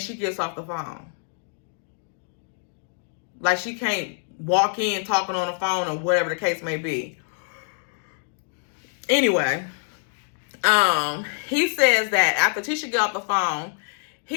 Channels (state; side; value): silent; right; 61 dB below the other